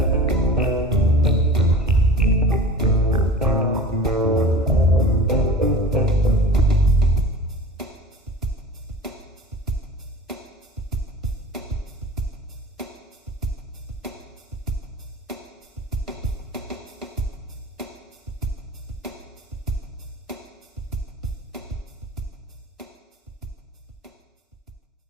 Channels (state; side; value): normal; both; correlation 0.37